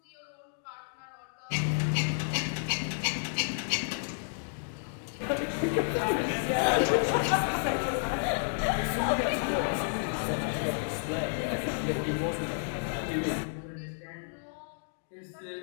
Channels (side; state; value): right; silent; digital silence